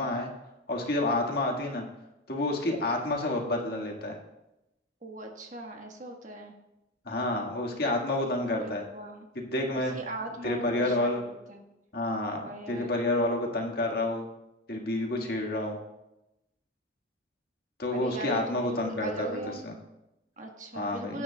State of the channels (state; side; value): normal; both; correlation 0.17